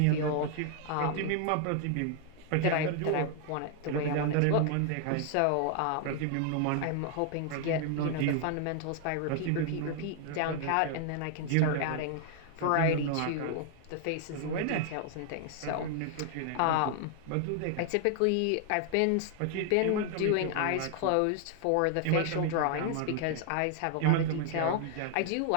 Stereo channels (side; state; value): both; different; correlation 0.00